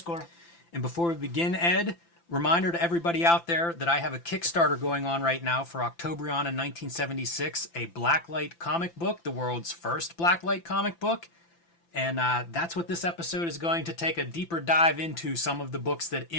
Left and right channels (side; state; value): right; late; 5.9 ms